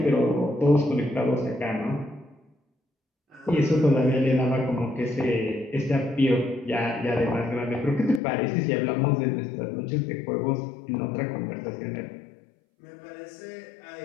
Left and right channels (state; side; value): drops out; right; at 8.2 s